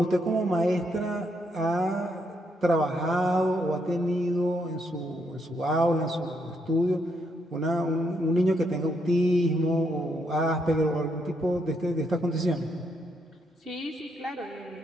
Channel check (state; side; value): normal; both; correlation 0.76